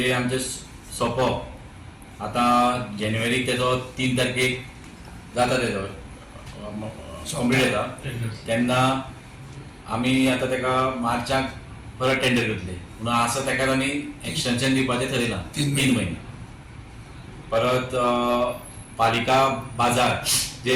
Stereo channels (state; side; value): identical; both; correlation 1.00